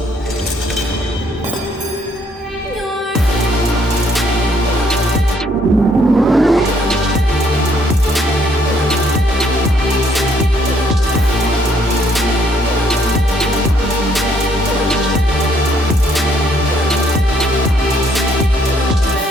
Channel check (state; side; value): normal; both; correlation 0.67